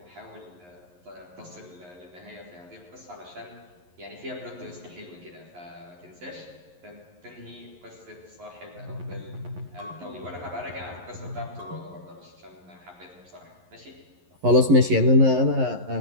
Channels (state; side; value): late; left; 11 ms